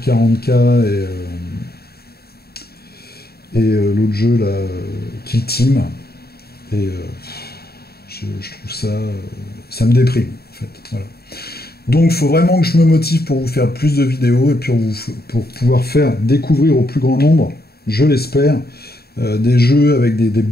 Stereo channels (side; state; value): right; late; 0.46 ms